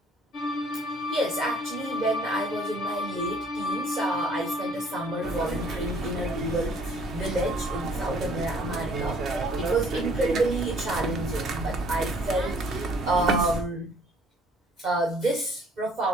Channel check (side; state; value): both; normal; correlation 0.58